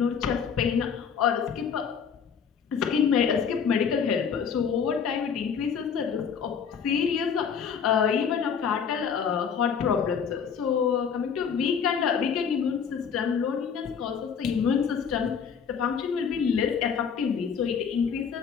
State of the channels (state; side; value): quieter; right; 6.9 dB